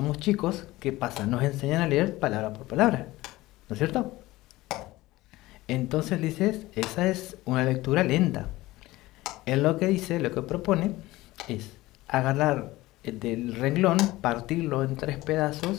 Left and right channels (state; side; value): quieter; right; 18.5 dB